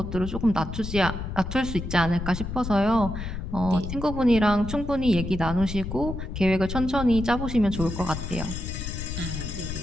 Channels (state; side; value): noise; left; rumble, 6 dB below the sound